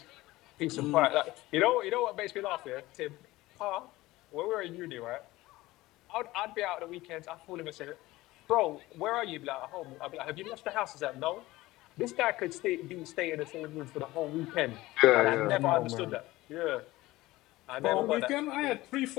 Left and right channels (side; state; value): right; quieter; 18.3 dB